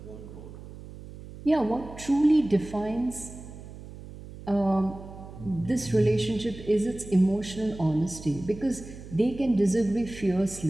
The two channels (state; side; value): noise; right; hum, 15 dB below the sound